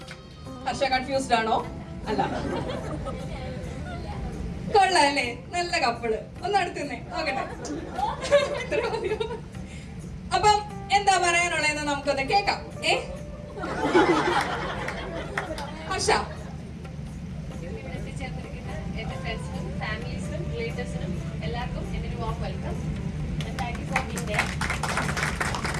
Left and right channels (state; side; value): identical; both; correlation 1.00